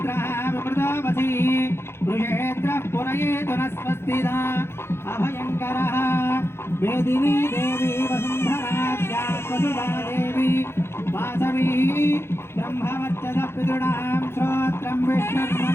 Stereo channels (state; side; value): late; right; 0.12 ms